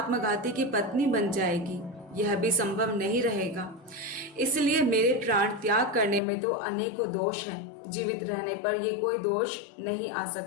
की पत्नी बन जाएगी। यह भी संभव नहीं रहेगा। इसलिए मेरे प्राण त्याग करने में तो अनेकों दोष हैं। जीवित रहने पर ये कोई दोष नहीं आ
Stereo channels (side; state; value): right; drops out; at 6.2 s